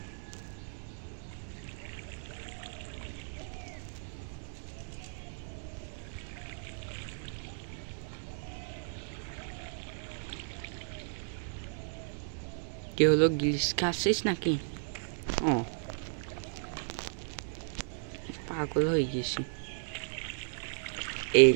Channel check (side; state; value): left; silent; digital silence